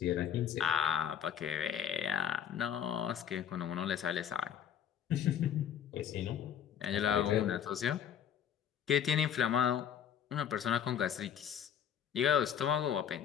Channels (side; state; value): right; quieter; 9.1 dB